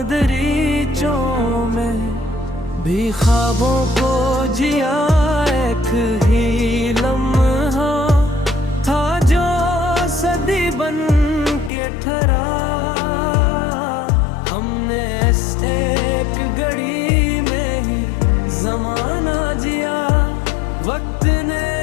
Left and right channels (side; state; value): right; drops out; at 11.7 s